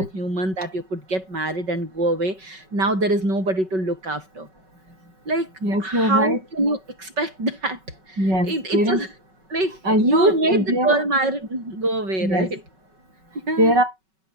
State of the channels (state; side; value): late; left; 5.3 ms